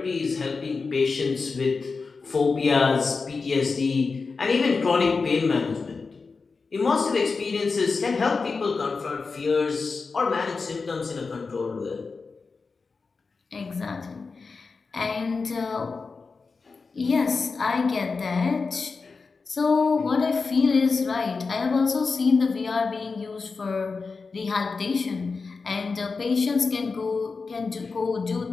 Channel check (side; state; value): right; quieter; 4.5 dB